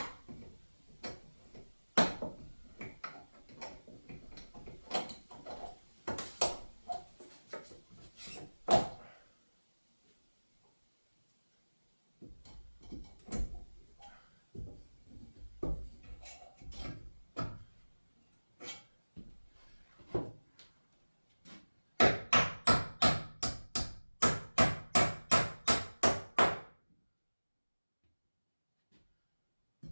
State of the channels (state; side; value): inverted; both; correlation -1.00